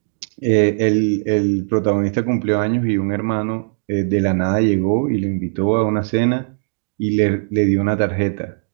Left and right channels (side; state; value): left; silent; digital silence